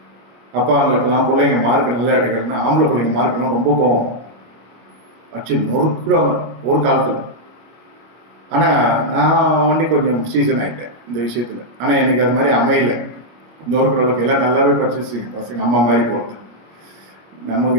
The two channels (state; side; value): late; left; 26 ms